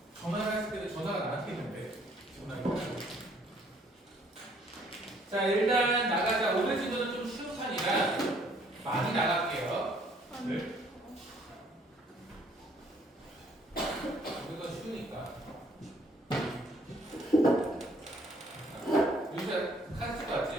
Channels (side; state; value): both; normal; correlation 0.63